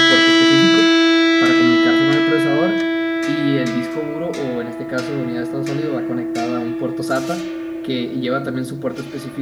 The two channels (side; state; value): both; identical; correlation 1.00